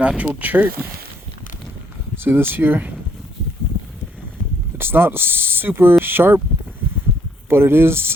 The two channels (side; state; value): both; normal; correlation 0.68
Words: chert. See this here? It's not super sharp, but it